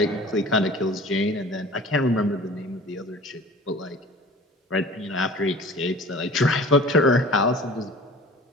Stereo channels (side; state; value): both; normal; correlation 0.44